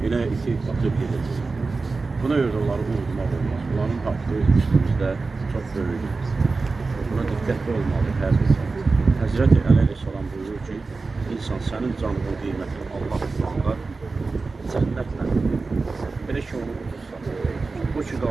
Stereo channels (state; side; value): quieter; left; 3.9 dB